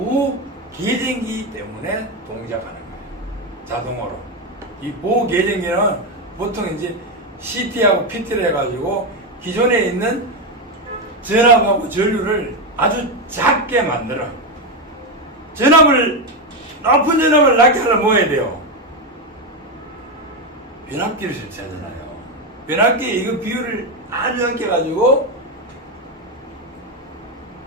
계쟁기 때문에 동작하는 거예요. 자동으로. 이 보호 계쟁기는 보통 이제 CT하고 PT를 해가지고 기존에 있는 전압하고 전류를 아주 작게 만들어. 높은 전압을 낮게 하려면 뭐 해야 돼요? 변압기를 설치하잖아요. 변압기에 이거 비율을 아주 작게 가지고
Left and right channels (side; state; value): both; normal; correlation 0.09